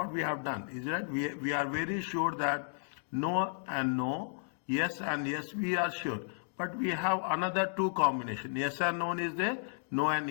we have done. Is that we are very sure that no and no, yes and yes, we are sure. But we have another two combination. Yes and no is there, no and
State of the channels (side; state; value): right; silent; digital silence